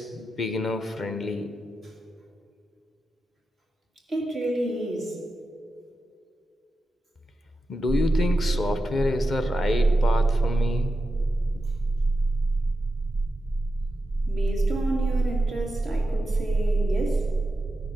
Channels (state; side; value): normal; both; correlation 0.90